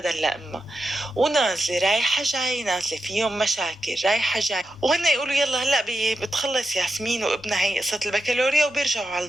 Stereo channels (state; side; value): normal; both; correlation 0.88